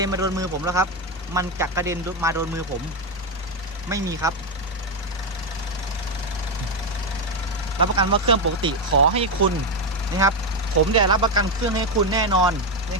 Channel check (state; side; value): normal; both; correlation 0.08